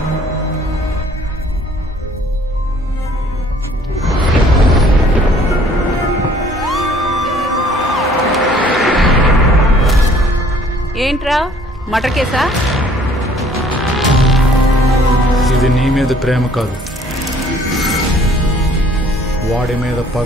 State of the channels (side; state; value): both; normal; correlation 0.58